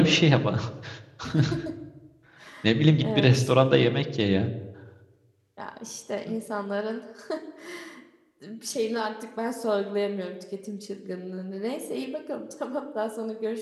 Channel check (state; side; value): identical; both; correlation 1.00